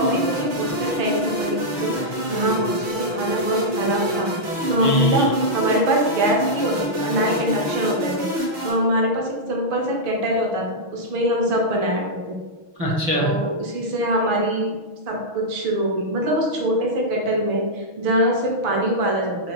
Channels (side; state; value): left; late; 6.2 ms